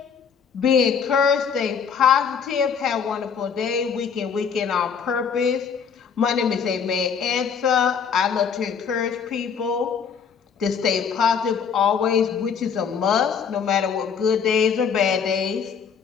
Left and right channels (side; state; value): right; quieter; 6.7 dB